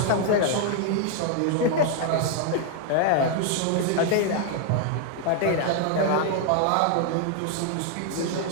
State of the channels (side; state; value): both; different; correlation 0.00